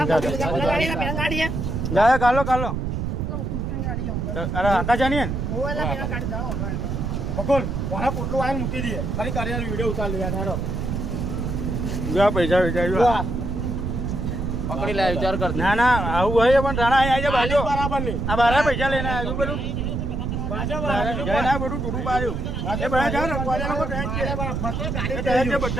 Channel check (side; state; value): right; noise; rumble, 2 dB below the sound